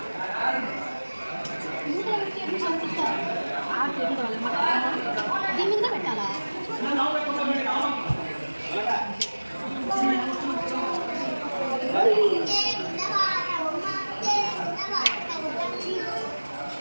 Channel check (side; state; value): both; inverted; correlation -1.00